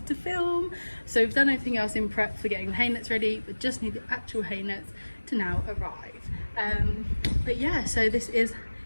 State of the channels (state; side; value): inverted; both; correlation -1.00